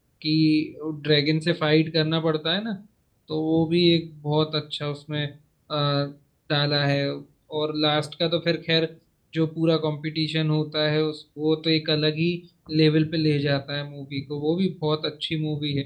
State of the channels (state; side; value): identical; both; correlation 1.00